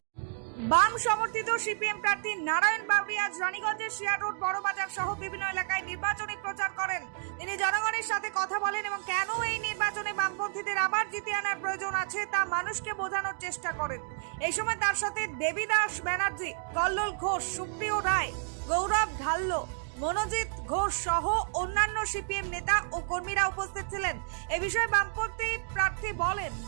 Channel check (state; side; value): silent; left; digital silence